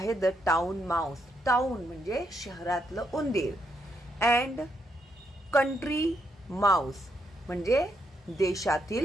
द टाउन माउस. टाउन म्हणजे शहरातलं उंदीर, अँड कंट्री माउस म्हणजे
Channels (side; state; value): both; normal; correlation 0.77